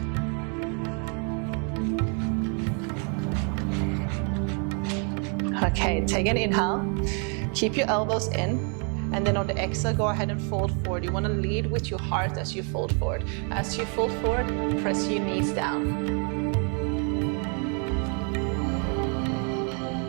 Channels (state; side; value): quieter; left; 39.0 dB